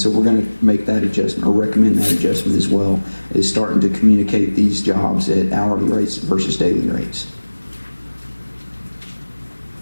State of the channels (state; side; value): inverted; both; correlation -1.00